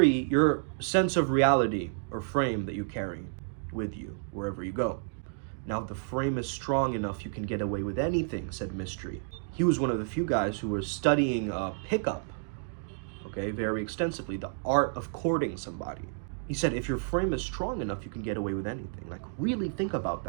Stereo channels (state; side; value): silent; left; digital silence